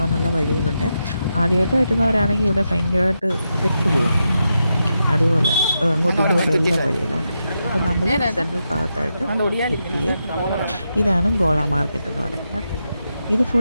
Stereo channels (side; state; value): both; inverted; correlation -0.86